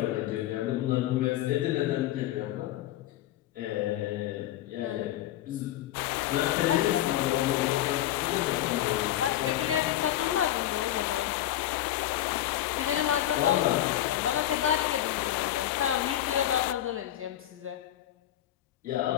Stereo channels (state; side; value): quieter; right; 13.1 dB